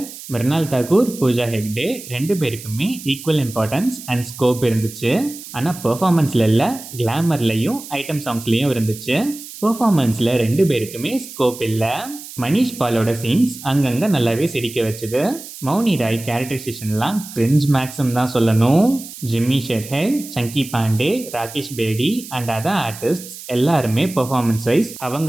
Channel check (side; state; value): right; noise; hiss, 14 dB below the sound